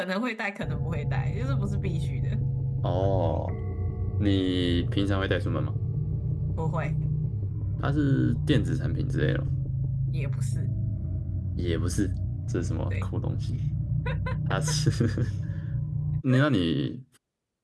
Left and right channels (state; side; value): identical; both; correlation 1.00